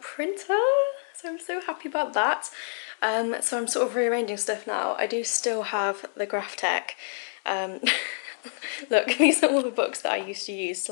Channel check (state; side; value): silent; right; digital silence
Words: So I'm so happy about that. So I'm sort of rearranging stuff now. I do still have the Graphtec. Look, these are all the books that I used to use to